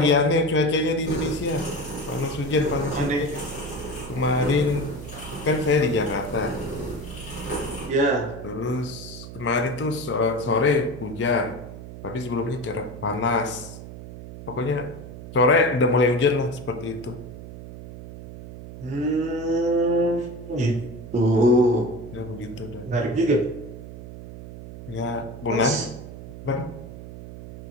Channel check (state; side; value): noise; right; hum, 13 dB below the sound